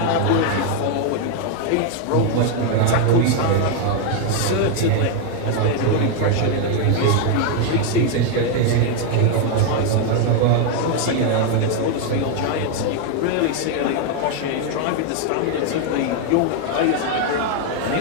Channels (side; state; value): both; different; correlation 0.01